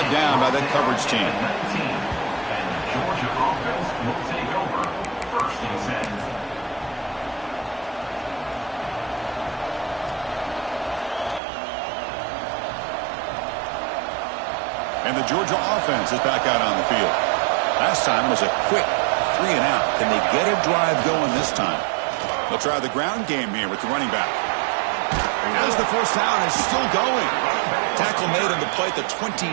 down by that coverage team. And the Georgia offense is back out on the field. Last time was a quick 3 and out. Can they get a drive going this time? They'll try the ground game here with the running back. As the first down is still going. play at the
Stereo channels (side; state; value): left; drops out; at 11.4 s